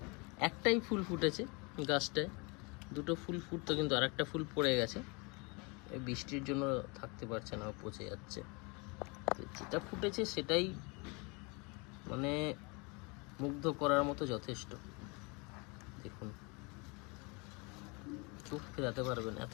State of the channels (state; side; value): quieter; right; 29.6 dB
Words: একটাই ফুল ফুটেছে গাছটায়, দুটো ফুল ফুটতো কিন্তু আর একটা ফুল পড়ে গেছে, এই বৃষ্টির জন্য থাকতে পারছে না, পচে যাচ্ছে। যেটা ফুটেছে সেটাই মানে মুগ্ধ করার মতো যথেষ্ট। দেখুন চোখ ফেরাতে পারবেন, এত